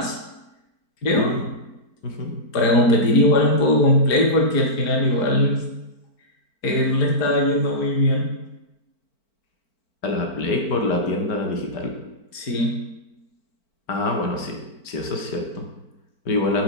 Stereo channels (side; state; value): right; late; 4.5 ms